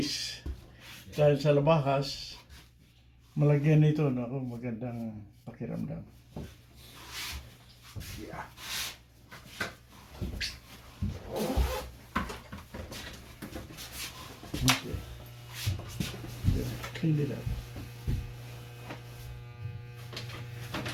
dahil sa labahas, malagyan nito nako magandang pakiramdam. Yeah. Okay. Yeah, clean it up.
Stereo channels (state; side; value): identical; both; correlation 1.00